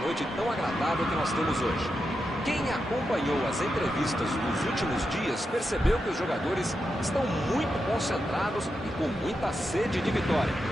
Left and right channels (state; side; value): normal; both; correlation 0.87